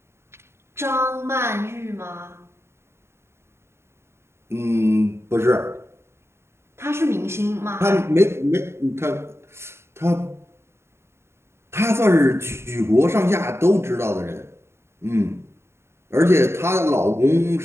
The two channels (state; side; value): late; left; 0.12 ms